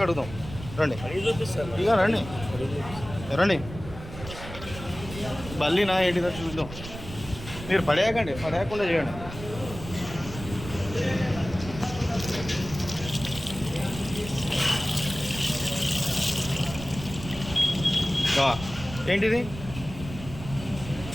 కడుగుదాం. రండి ఇక రండి రండి. బల్లినా ఏంటిదో చూద్దాం. మీరు పడేయకండి, పడేయకుండా చేయండి. ఏంటిది?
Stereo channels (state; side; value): noise; right; rumble, 12 dB below the sound